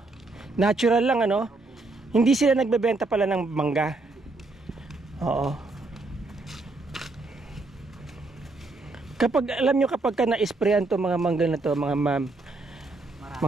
Natural lang ano. Hindi sila nagbebenta pala ng mangga. Oo. Kapag alam nyo, kapag ka na-sprayan to mga mangga na to, mga ma'am,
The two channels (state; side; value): quieter; left; 3.2 dB